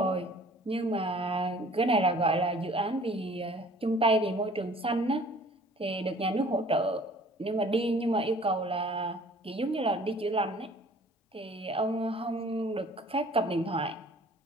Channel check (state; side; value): normal; both; correlation 0.52